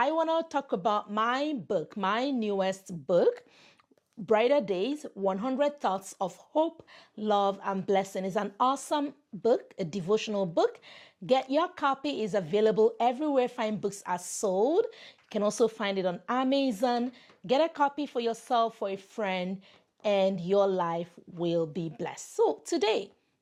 want to talk about my book, my newest book, Brighter Days, 100 Thoughts of Hope, Love, and Blessing. Is an awesome book, a devotional book. Get your copy. Is available everywhere fine books are sold. You can also find it on Amazon. Get a copy for yourself, for a friend, and your life will be blessed. So today,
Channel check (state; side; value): identical; both; correlation 1.00